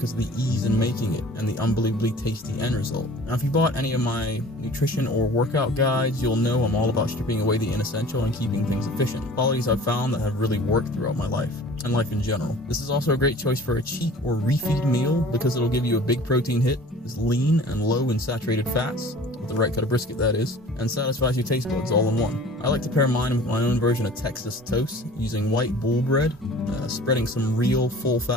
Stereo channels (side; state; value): both; normal; correlation 0.45